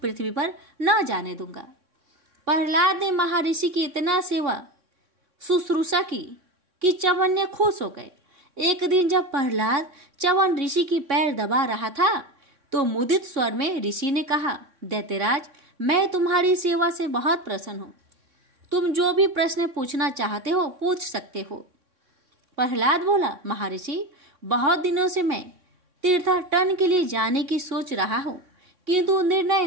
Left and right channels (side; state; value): left; late; 3.6 ms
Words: पृथ्वी पर न जाने दूंगा। प्रहलाद ने महर्षि की इतना सेवा शुश्रूषा की कि च्यवन ने खुश हो गए। एक दिन जब प्रहलाद च्यवन ऋषि की पैर दबा रहा था तो मुदित स्वर में ऋषि ने कहा, दैत्यराज, मैं तुम्हारी सेवा से बहुत प्रसन्न हूँ। तुम जो भी प्रश्न पूछना चाहते हो पूछ सकते हो। प्रहलाद बोला, महर्षि, बहुत दिनों से मैं तीर्थाटन के लिए जाने की सोच रहा हूँ, किंतु निर्णय